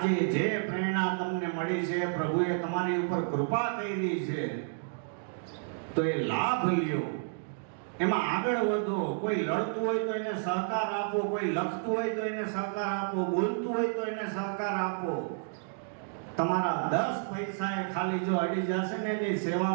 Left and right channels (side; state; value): left; silent; digital silence